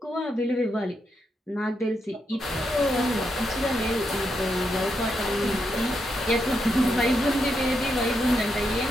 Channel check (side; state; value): both; normal; correlation 0.82